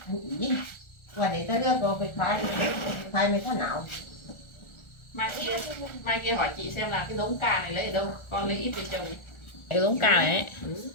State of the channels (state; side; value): late; right; 1.4 ms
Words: và để tới đưa cô phải khai mấy tháng nào Mai kia hỏi chị xem là cái giống cà này lấy ở đâu, con lấy ít về trồng. Cái giống cà này ấy,